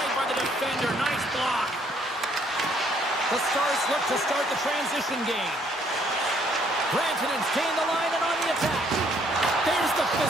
by the defender. Nice block. The Stars look to start the transition game. Rantanen's gained the line and on the attack. There's the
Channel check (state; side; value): normal; both; correlation 0.66